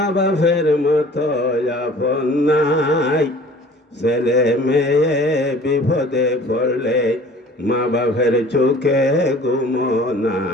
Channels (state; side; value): normal; both; correlation 0.48